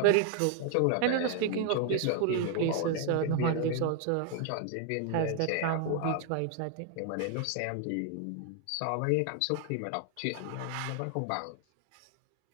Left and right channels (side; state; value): both; different; correlation 0.00